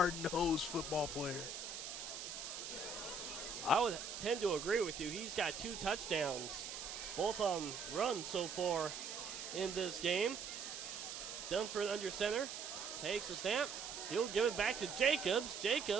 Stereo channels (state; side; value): noise; right; hiss, 7 dB below the sound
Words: football player. I would tend to agree with you. He's got 2 touchdowns, both on runs so far in this game. Dunford under center, takes a snap. He'll give it back to Jacobs.